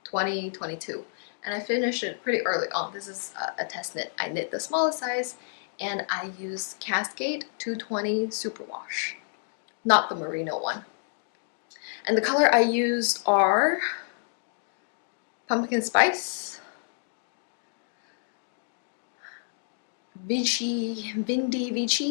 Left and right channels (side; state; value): right; silent; digital silence